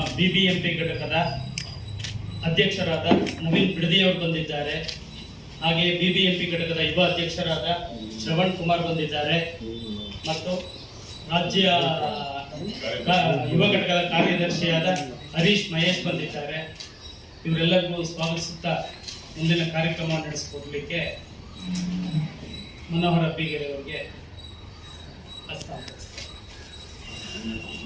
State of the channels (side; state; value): both; identical; correlation 1.00